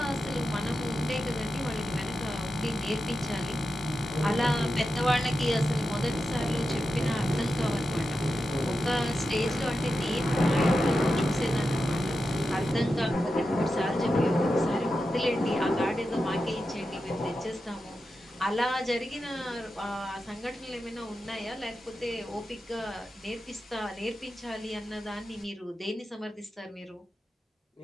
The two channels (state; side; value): normal; both; correlation 0.90